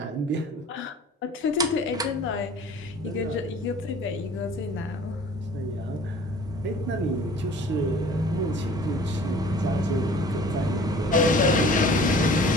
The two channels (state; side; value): normal; both; correlation 0.47